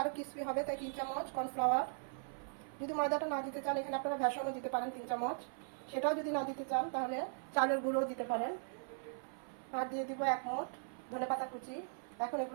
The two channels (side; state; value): left; silent; 52 dB below the other